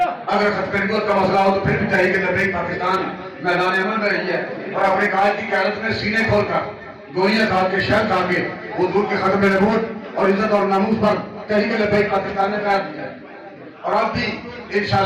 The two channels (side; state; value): both; identical; correlation 1.00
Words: اگر ختم نبوت کا مسئلہ ہو تو پھر بھی تحریک لبیک پاکستان میدان عمل میں رہی ہے اور اپنے قائد کی قیادت میں سینے کھول کر گوئیاں کھا کے شہر کھا کے حضور کے ختم نبوت اور عزت اور ناموس پر تحریک لبیک پاکستان نے قائد کیا ہے اور اب بھی